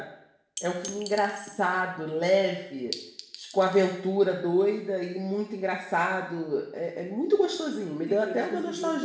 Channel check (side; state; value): both; identical; correlation 1.00